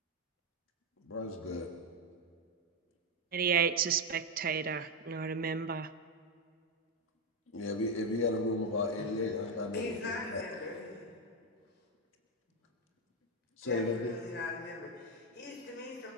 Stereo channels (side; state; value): both; normal; correlation 0.05